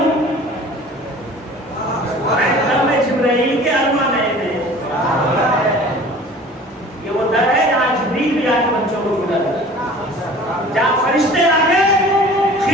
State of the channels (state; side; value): normal; both; correlation 0.45